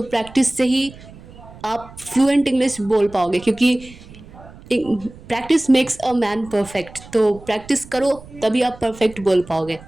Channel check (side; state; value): right; noise; rumble, 19 dB below the sound